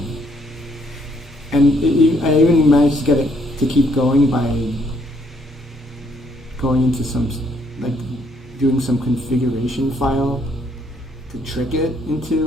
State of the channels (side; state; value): both; normal; correlation 0.69